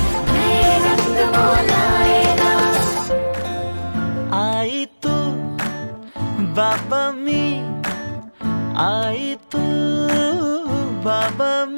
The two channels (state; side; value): inverted; both; correlation -1.00